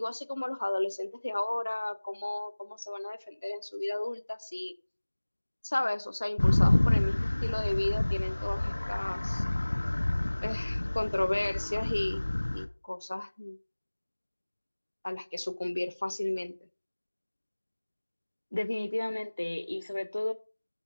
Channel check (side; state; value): both; inverted; correlation -1.00